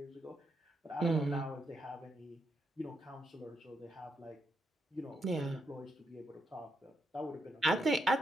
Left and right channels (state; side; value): normal; both; correlation 0.81